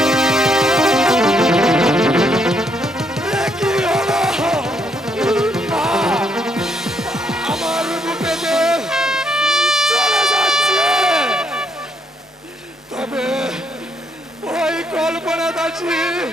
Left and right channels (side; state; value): both; normal; correlation 0.74